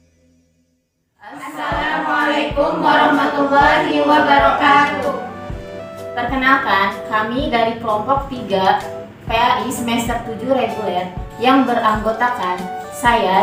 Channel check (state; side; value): identical; both; correlation 1.00